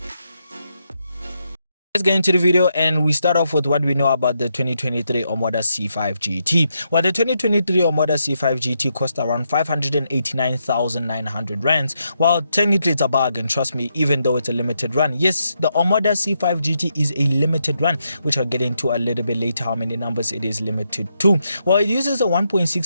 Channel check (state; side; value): inverted; both; correlation -0.81